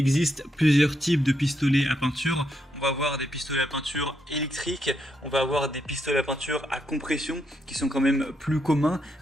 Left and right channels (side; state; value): both; normal; correlation 0.79